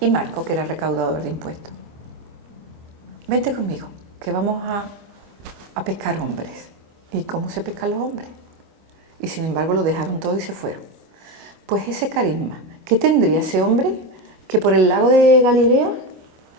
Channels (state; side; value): late; left; 25 ms